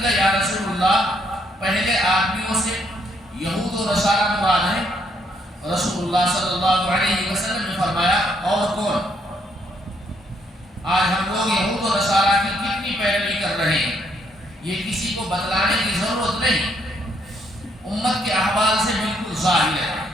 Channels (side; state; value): both; normal; correlation 0.71